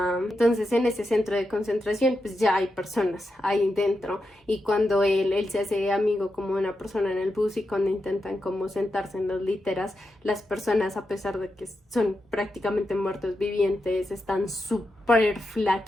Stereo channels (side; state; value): both; normal; correlation 0.87